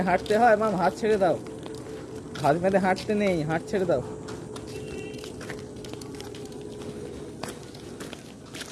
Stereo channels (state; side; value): identical; both; correlation 1.00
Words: হাঁটতে হয় মাম? হাত ছেড়ে দাও। হাত বেঁধে হাঁটতে নেই, হাত ছেড়ে দাও।